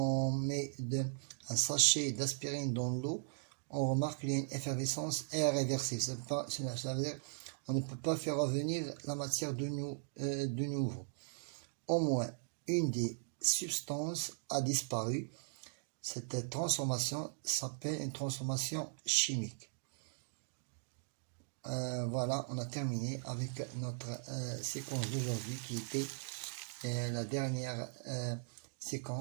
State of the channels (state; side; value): silent; left; digital silence